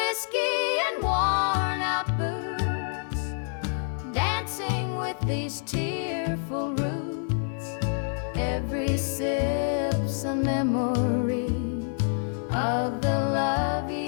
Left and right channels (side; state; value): right; silent; digital silence